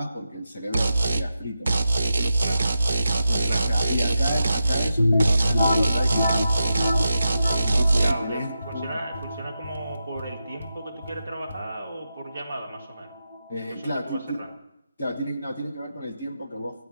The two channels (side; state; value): both; inverted; correlation -0.88